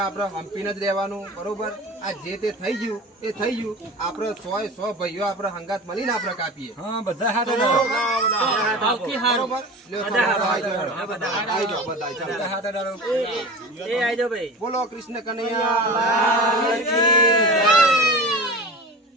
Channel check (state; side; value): normal; both; correlation 0.33